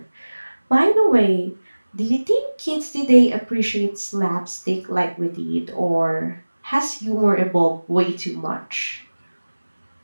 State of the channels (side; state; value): both; inverted; correlation -1.00